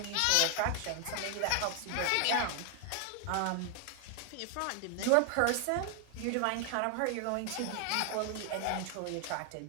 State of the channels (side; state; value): both; different; correlation 0.00